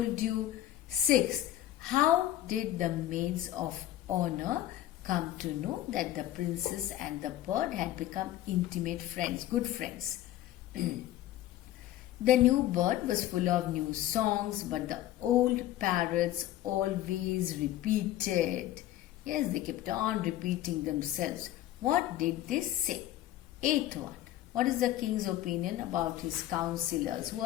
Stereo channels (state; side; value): quieter; right; 13.6 dB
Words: you. Sixth, how did the maids of honor come to know that the princess and the bird had become intimate friends, good friends? The new bird was full of new songs, but the old parrots always repeated. Yes, they kept on repeating themselves. What did they say? Eighth one. What is the king's opinion about his counselors? Who